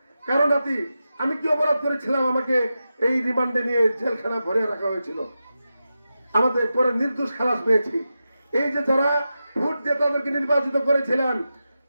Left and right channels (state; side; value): inverted; both; correlation -0.91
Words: কারো নাতি, আমি কি অপরাধ করেছিলাম আমাকে এই রিমান্ডে নিয়ে জেলখানা ভরে রাখা হয়েছিল? আমাদের পরে নির্দোষ খালাস পেয়েছি। এই যে যারা ভোট দিয়ে তাদেরকে নির্বাচিত করেছিলেন,